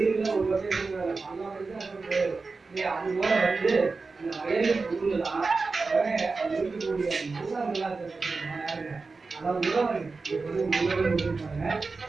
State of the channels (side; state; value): left; quieter; 4.1 dB